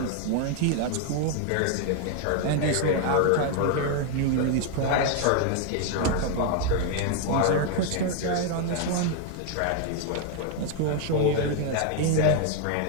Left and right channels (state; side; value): different; both; correlation 0.00